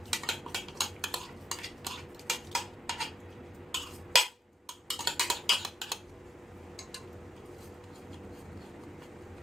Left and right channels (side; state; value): both; normal; correlation 0.82